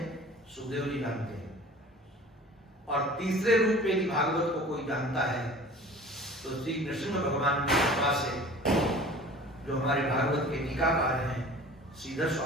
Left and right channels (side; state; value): both; normal; correlation 0.44